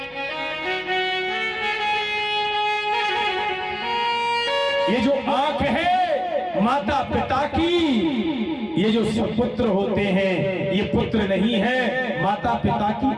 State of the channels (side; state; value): both; identical; correlation 1.00